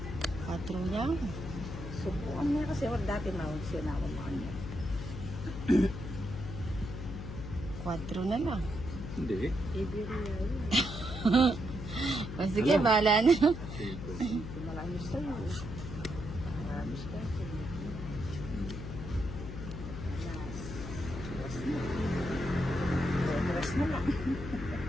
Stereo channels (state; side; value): noise; left; hum, 8 dB below the sound